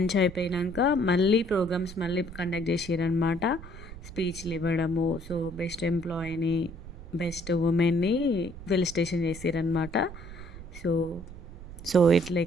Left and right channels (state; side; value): noise; right; rumble, 14 dB below the sound